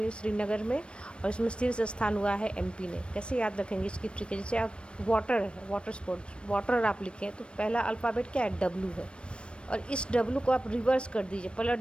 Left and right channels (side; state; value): right; late; 0.057 ms